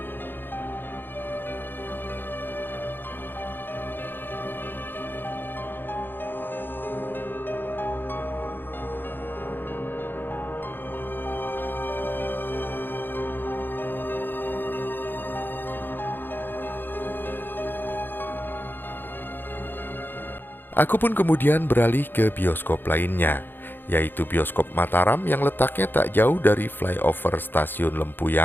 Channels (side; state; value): right; late; 0.096 ms